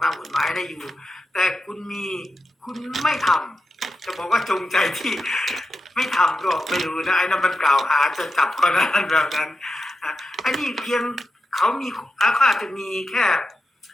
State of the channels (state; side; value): normal; both; correlation 0.89